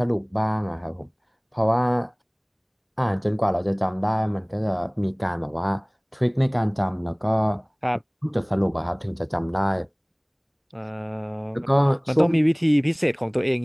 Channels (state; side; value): identical; both; correlation 1.00